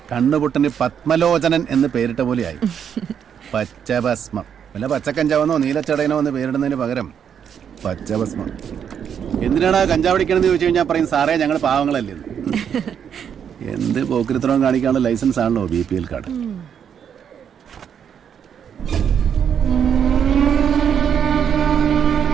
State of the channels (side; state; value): left; quieter; 8.1 dB